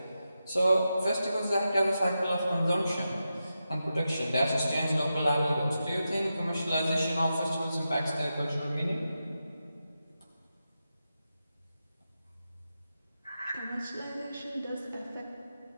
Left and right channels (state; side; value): inverted; both; correlation -0.89